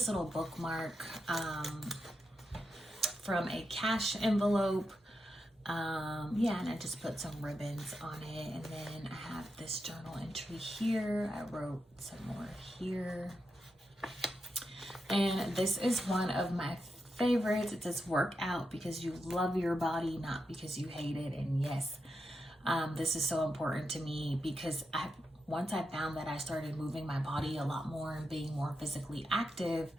little bookmark from a cash envelope. Yeah, and I just put some ribbons on it. And then I have this journal entry here. I wrote some more here. And this is one of my favorites. It says work out because you love your body, not because you hate it. And yes, this is so important to me, because once I found that I started moving my body a lot more and being more physically active,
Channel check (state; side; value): normal; both; correlation 0.86